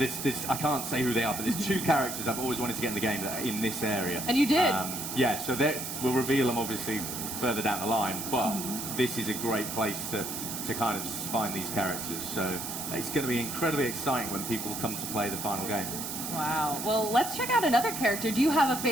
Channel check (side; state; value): right; noise; hiss, 5 dB below the sound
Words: I can't say who they are, but there's 2 characters I've always wanted to get in the game that are in this area. And you did? So we'll reveal them obviously further down the line, but this is a great place to kind of find these characters. So it's going to be incredibly exciting when people come to play the final game. Wow. Well, let's check out another character. Do you have a